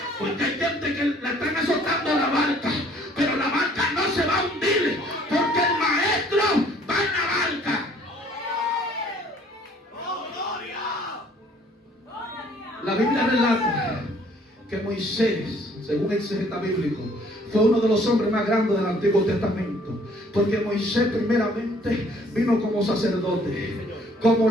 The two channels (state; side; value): normal; both; correlation 0.59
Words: porque hay gente que la están azotando la barca, pero la barca no se va a hundir, porque el maestro va en la barca. La Biblia relata que Moisés, según el exegeta bíblico, fue uno de los hombres más grandes del Antiguo Testamento, porque Moisés primeramente vino como sacerdote, como